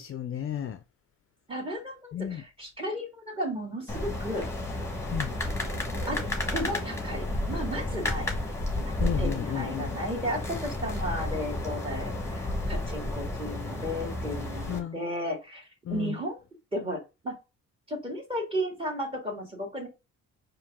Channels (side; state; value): both; normal; correlation 0.46